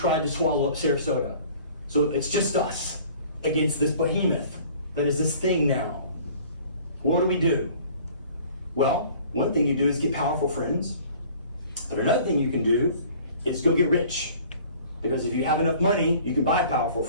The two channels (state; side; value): inverted; both; correlation -0.50